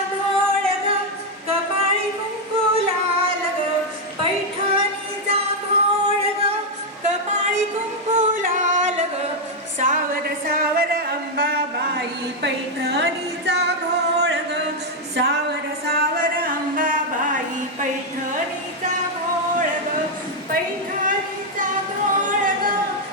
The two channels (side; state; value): both; normal; correlation 0.01